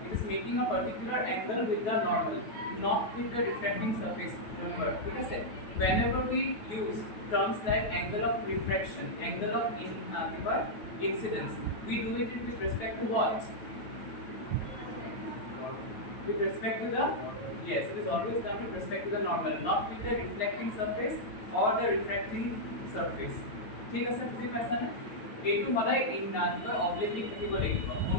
it is making a particular angle with the normal, not with the refracting surface, remember, ঠিক আছে, whenever we use terms like angle of refraction, angle of incidence, we do it with respect to what? With respect to the, yes, it is always done with respect to the normal, not with the reflecting surface or the refracting surface, ঠিক আছে, বুজি পাইছা না? এইটো সদায় oblique থাকিব লাগিব,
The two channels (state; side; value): late; right; 9.3 ms